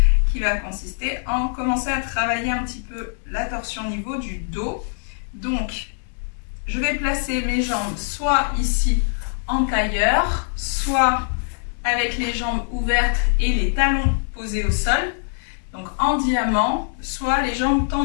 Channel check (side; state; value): right; silent; 64 dB below the other